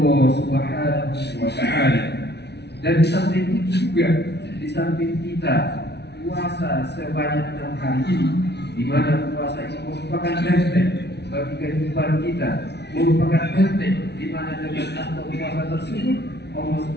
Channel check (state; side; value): late; right; 0.49 ms